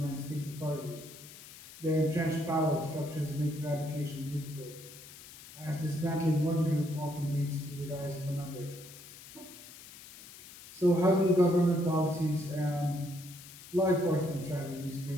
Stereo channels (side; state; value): left; noise; hiss, 17 dB below the sound